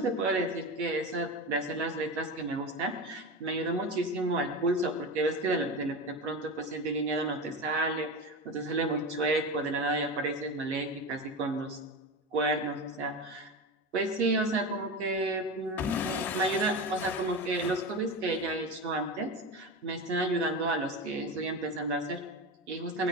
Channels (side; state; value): both; normal; correlation 0.23